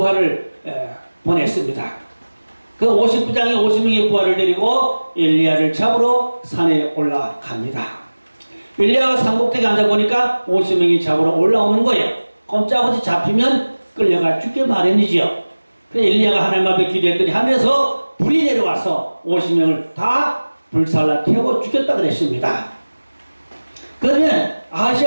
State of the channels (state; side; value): inverted; both; correlation -1.00